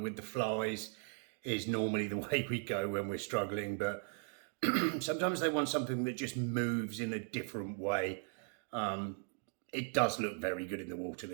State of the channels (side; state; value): left; silent; 52 dB below the other